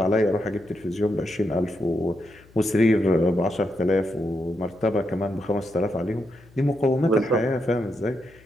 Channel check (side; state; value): left; noise; hum, 26 dB below the sound